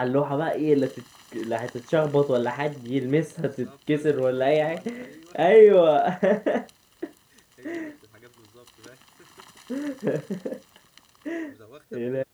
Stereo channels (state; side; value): identical; both; correlation 1.00